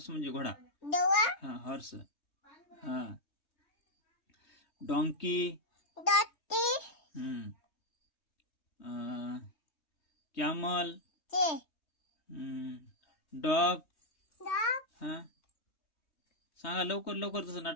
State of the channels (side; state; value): right; late; 3.2 ms